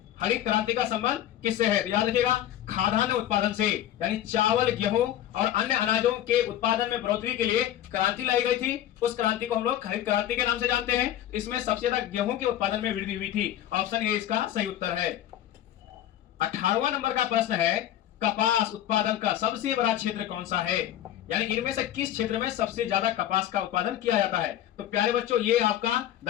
हरित क्रांति का संबंध किससे है। तो याद रखिएगा खाद्यान्न उत्पादन से, यानी चावल, गेहूं और अन्य अनाजों के उत्पादन में बढ़ोतरी के लिए क्रांति लाई गई थी, उस क्रांति को हम लोग हरित क्रांति के नाम से जानते हैं। इसमें सबसे ज्यादा गेहूं के उत्पादन में वृद्धि हुई थी, ऑप्शन ए इसका सही उत्तर है। 18वां नंबर का प्रश्न है कपास उत्पादन का सबसे बड़ा क्षेत्र कौन सा है, यानी इनमें से किस क्षेत्र में सबसे ज्यादा कपास का उत्पादन किया जाता है। तो प्यारे बच्चों ये आपका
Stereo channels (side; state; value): right; quieter; 12.0 dB